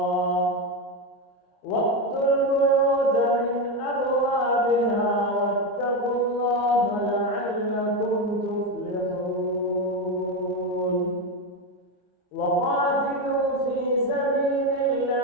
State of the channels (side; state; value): right; late; 27 ms